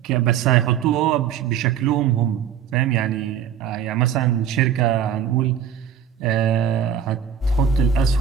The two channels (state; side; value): quieter; left; 8.4 dB